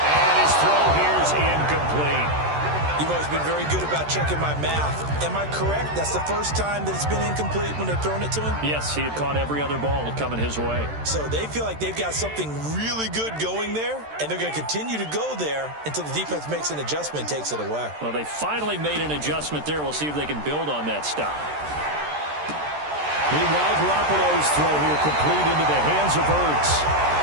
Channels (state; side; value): late; left; 13 ms